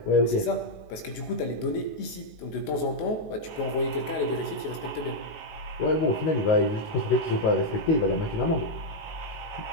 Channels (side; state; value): right; late; 19 ms